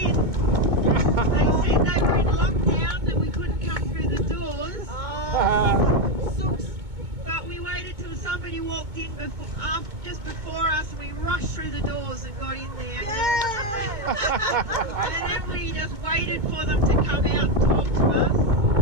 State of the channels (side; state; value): left; late; 2.2 ms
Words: They said they were in lockdown and we couldn't come through the doors. But we waited till somebody walked in just before us, and we rushed through the doors and got in there. And then we just waited for them to come out and talk to us.